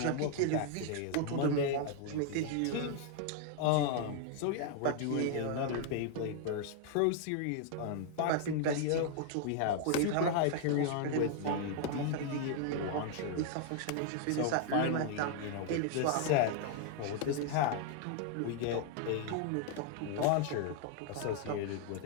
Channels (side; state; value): both; different; correlation 0.00